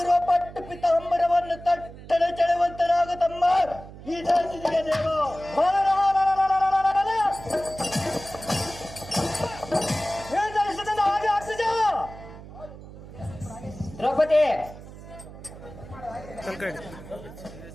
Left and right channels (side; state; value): right; noise; hum, 15 dB below the sound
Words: ಪಟ್ಟು ಪಿತಾಂಬರವನ್ನು ತಟ್ಟನೆ ಚೆಳುವಂತನಾಗ ತಮ್ಮ ಈ ಜಾತಿಗೆ ದೇವ ಹಾಗೆ ಅಗ್ರಜ ದ್ರೌಪದಿ